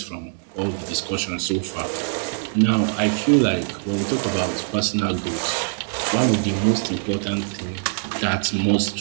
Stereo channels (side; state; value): left; silent; digital silence